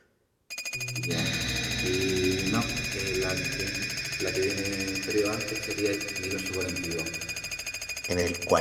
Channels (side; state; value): both; identical; correlation 1.00